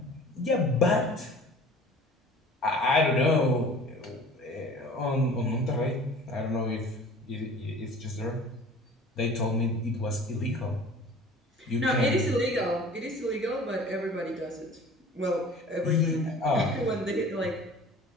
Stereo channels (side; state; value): both; normal; correlation 0.45